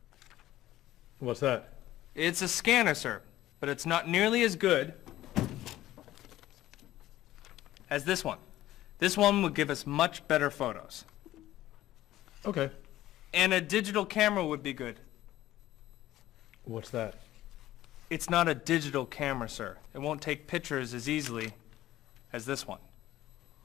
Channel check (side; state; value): right; quieter; 14.6 dB